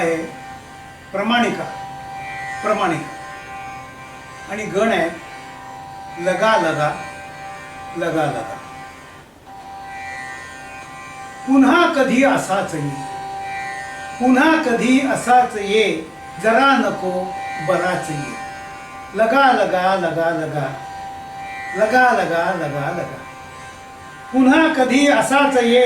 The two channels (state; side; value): identical; both; correlation 1.00